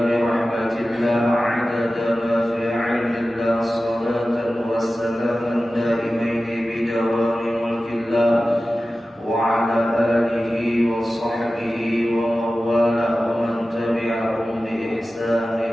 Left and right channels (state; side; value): normal; both; correlation 0.95